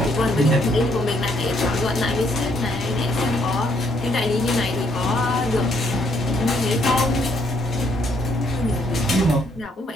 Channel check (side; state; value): both; normal; correlation 0.70